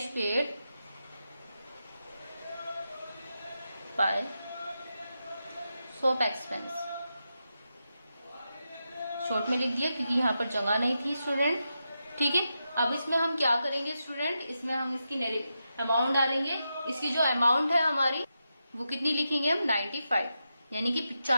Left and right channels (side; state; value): both; inverted; correlation -0.87